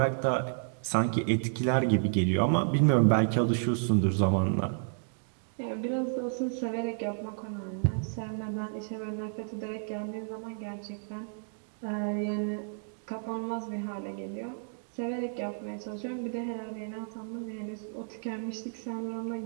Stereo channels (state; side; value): silent; left; digital silence